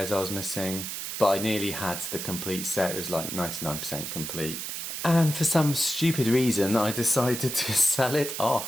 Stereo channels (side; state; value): right; noise; hiss, 5 dB below the sound